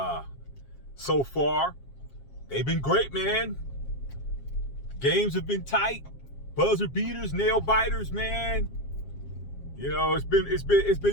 so far. They've been great, man. Games have been tight. Buzzer beaters, nail biters, man. You know, it's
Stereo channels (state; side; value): late; right; 7.4 ms